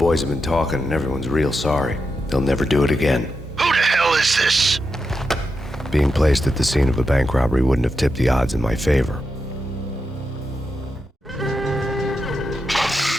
have been talking and everyone's real sorry. They'll never do it again. Who the hell is this? Being placed at the scene of a bank robbery wouldn't have tipped the odds in my favor.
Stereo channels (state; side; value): normal; both; correlation 0.87